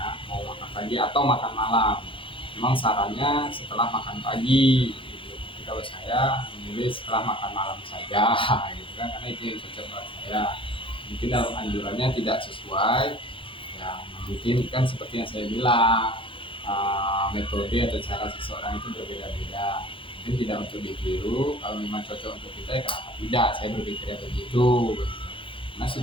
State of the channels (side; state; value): right; late; 0.25 ms